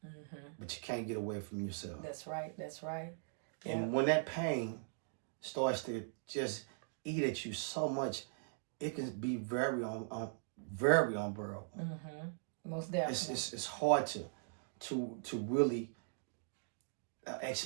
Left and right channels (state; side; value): silent; left; digital silence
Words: but you can't get away from yourself. That's right. And when that pain starts to just eat at you so much, it can be very unbearable. Most definitely. It's hard to really